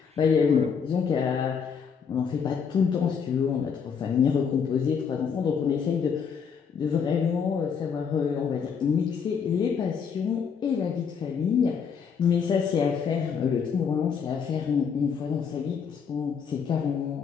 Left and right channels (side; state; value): right; quieter; 6.5 dB